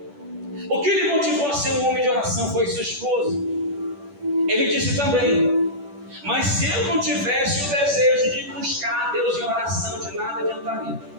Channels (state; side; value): late; left; 10 ms